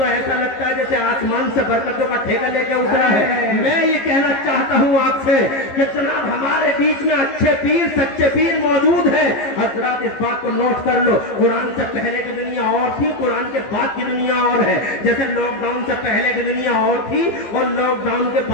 ऐसा लगता है जैसे आसमान से बरकतों का ठेका लेके उतरा है। मैं ये कहना चाहता हूँ आपसे कि जनाब हमारे बीच में अच्छे पीर, सच्चे पीर मौजूद हैं। हजरात इस बात को नोट कर लो, कुरान से पहले की दुनिया और थी, कुरान के बाद की दुनिया और है। जैसे लॉकडाउन से पहले की दुनिया और थी और लॉकडाउन के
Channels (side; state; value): right; late; 15 ms